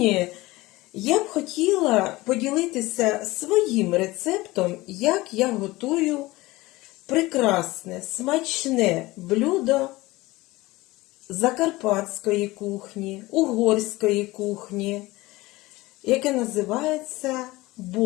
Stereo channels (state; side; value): quieter; right; 20.0 dB